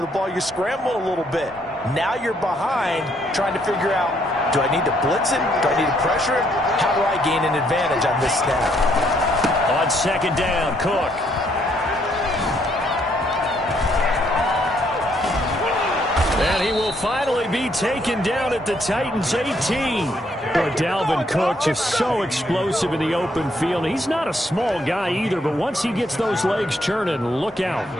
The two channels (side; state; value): both; normal; correlation 0.71